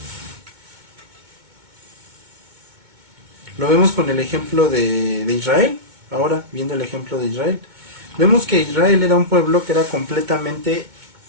Lo vemos con el ejemplo de Israel, ahora viendo el ejemplo de Israel. Vemos que Israel era un pueblo que era completamente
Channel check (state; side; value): late; left; 2.2 ms